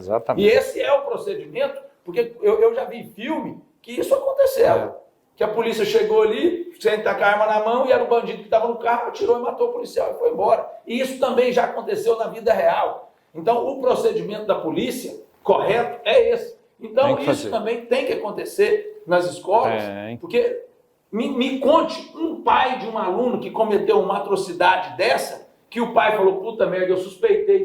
E esse é o procedimento. Porque eu já vi filme que isso aconteceu. Que a polícia chegou ali, sem estar com a arma na mão, e era o bandido que estava no carro, atirou e matou o policial e foi embora. E isso também já aconteceu na vida real. Então, o procedimento da polícia correto é esse. Então, isso também tem que acontecer nas escolas. Porque me conte um pai de um aluno que cometeu uma atrocidade dessa, que o pai falou, puta merda, eu suspeitei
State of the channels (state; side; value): identical; both; correlation 1.00